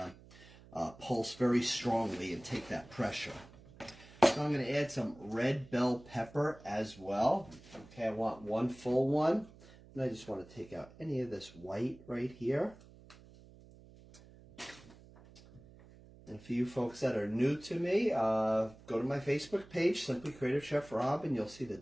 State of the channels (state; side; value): noise; right; hum, 22 dB below the sound